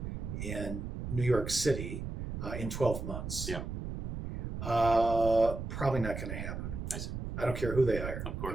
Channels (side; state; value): right; noise; rumble, 5 dB below the sound